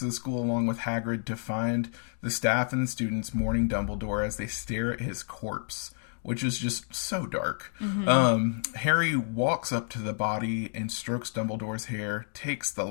the school along with Hagrid to find the staff and the students mourning Dumbledore as they stare at his corpse, which is just so dark. Harry walks up to the body and strokes Dumbledore's hair, takes the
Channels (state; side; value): silent; right; digital silence